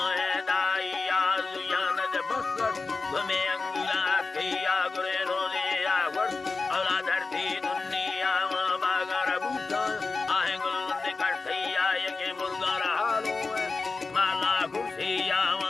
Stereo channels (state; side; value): quieter; right; 4.0 dB